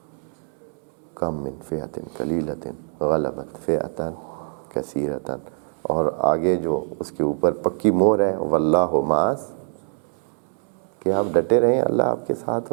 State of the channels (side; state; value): left; silent; digital silence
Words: کم من فئۃ قلیلۃ غلبت فئۃ کثیرۃ، اور آگے جو اس کے اوپر پکی مہر ہے واللہ مع، کہ آپ ڈٹے رہیں، اللہ آپ کے ساتھ